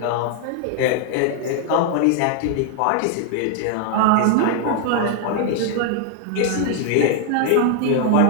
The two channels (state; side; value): different; both; correlation 0.00